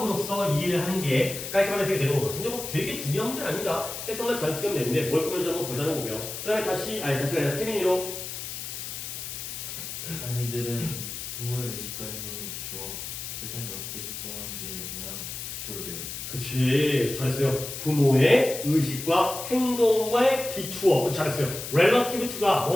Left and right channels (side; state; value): left; noise; hiss, 7 dB below the sound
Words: 이해를 하는 게 깔끔한 해석이 되는 거거든요. 근데 뭐 되게 중요한 문제는 아닙니다. 해석만 잘 쓰면 되는데 뭘 꾸며주는 거 보자는 거고요. 그 다음에 다시가 아니라 태민이로 아이들은 부모의 의식과 행동을 비추어 세상이 어떻게 작동하는지에 대한 기초를 배웁니다. 그치, 잘했어요. 부모의 의식과 행동에 비추어. 잘했어요. relative to가